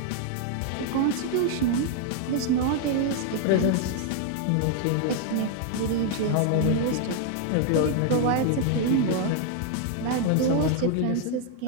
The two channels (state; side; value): different; both; correlation 0.00